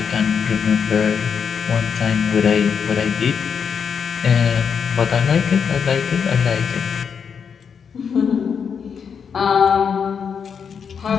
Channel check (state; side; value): quieter; right; 6.7 dB